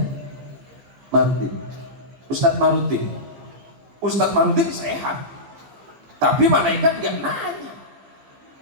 Marudin. Ustadz Marudin. Ustadz Marudin sehat. Tapi malaikat nggak nanya.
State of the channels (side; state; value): left; late; 15 ms